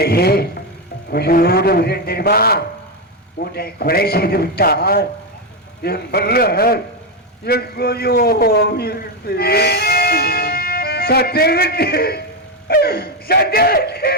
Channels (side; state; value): both; normal; correlation 0.07